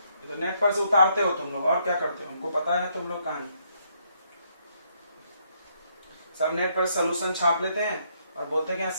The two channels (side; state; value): both; inverted; correlation -0.72